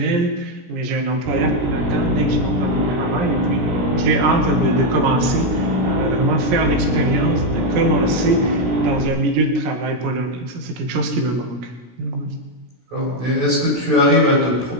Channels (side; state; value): left; late; 17 ms